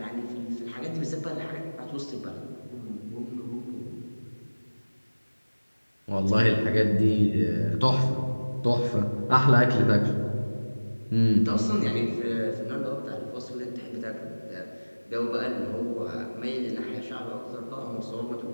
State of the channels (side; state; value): both; inverted; correlation -1.00